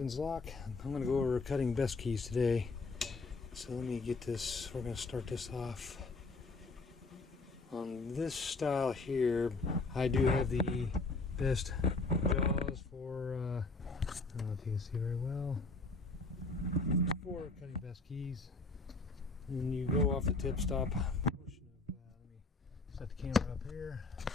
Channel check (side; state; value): right; quieter; 3.6 dB